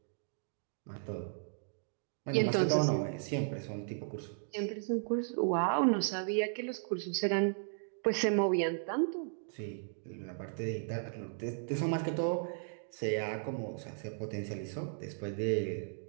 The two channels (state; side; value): silent; left; digital silence